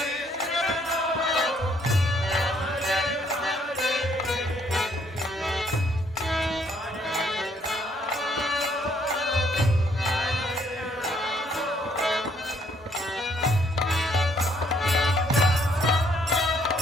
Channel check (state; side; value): normal; both; correlation 0.68